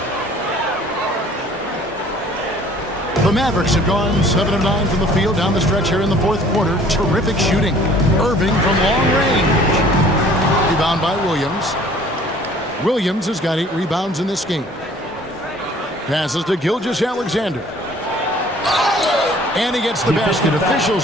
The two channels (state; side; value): normal; both; correlation 0.53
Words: The Mavericks have gone 7 of 9 from the field down the stretch here in the fourth quarter. Terrific shooting. Irving from long range. Rebound by Williams. Williams has got 8 rebounds in this game. Passes to Gilgeous-Alexander. And he gets the basket.